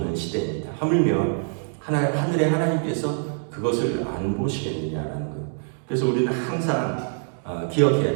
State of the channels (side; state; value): left; silent; digital silence